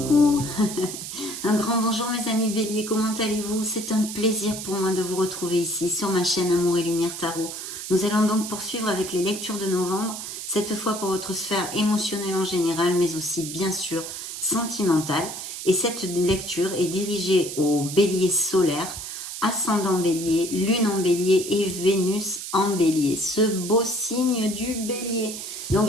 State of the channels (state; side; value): noise; right; hiss, 8 dB below the sound